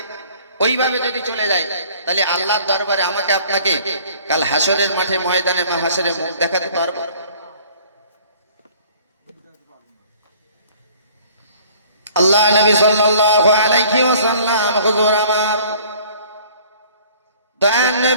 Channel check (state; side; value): inverted; both; correlation -0.53